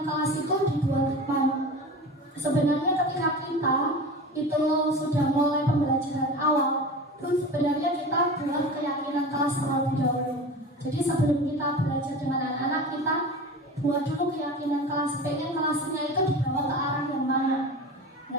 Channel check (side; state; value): both; normal; correlation 0.33